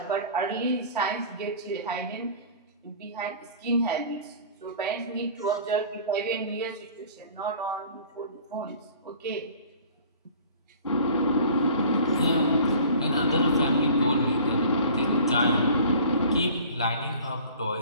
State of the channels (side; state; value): both; inverted; correlation -0.46